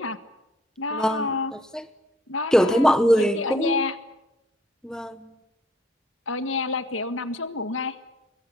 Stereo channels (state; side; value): normal; both; correlation 0.63